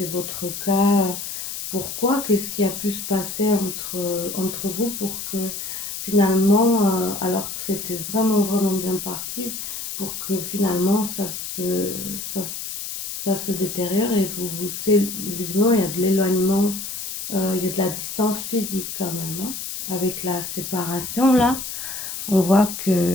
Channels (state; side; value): noise; left; hiss, 6 dB below the sound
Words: votre cas, pourquoi, qu'est-ce qui a pu se passer entre vous pour que finalement, alors que c'était vraiment, vraiment bien parti, pour que finalement ça, ça se détériore et visiblement, il y a de l'éloignement il y a de la distance physique quand même, hein. Avec la séparation, là, on voit